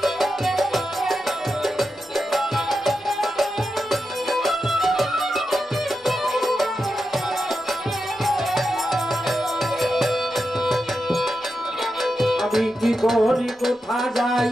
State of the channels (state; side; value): normal; both; correlation 0.88